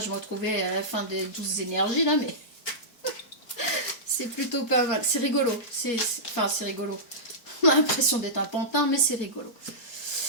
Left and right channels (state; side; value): late; right; 4.5 ms